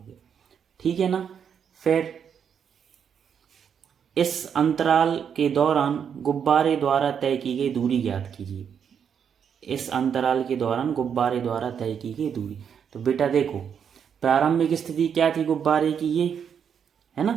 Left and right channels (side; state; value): left; quieter; 7.7 dB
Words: गया, ठीक है ना। फिर इस अंतराल के दौरान गुब्बारे द्वारा तय की गई दूरी ज्ञात कीजिए। इस अंतराल के दौरान गुब्बारे द्वारा तय की गई दूरी। तो बेटा देखो, प्रारंभिक स्थिति क्या थी गुब्बारे की, ये है